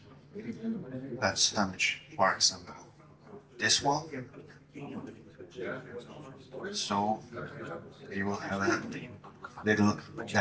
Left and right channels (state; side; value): identical; both; correlation 1.00